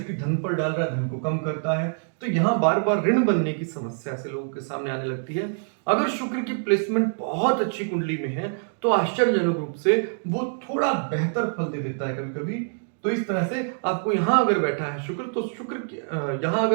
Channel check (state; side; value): silent; left; digital silence